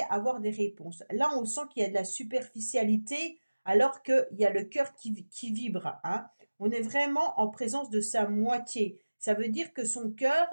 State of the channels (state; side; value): inverted; both; correlation -1.00